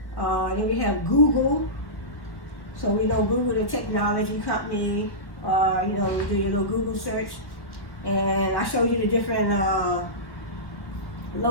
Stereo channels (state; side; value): late; right; 1.3 ms